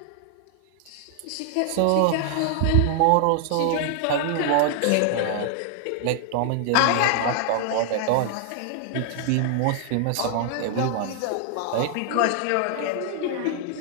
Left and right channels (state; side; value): different; both; correlation 0.00